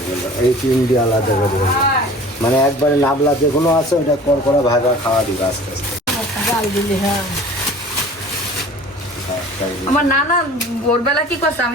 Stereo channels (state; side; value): normal; both; correlation 0.44